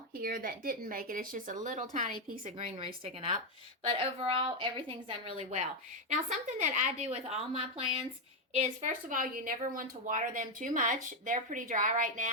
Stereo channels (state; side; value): normal; both; correlation 0.04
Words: here that didn't make it. It's just a little tiny piece of greenery sticking up. But overall, everything's done really well. Now, something that I do with all my plants is, first of all, you never want to water them too much. They're pretty dry right